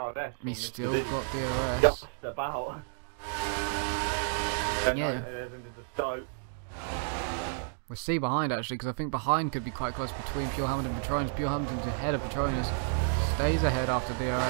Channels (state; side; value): silent; left; digital silence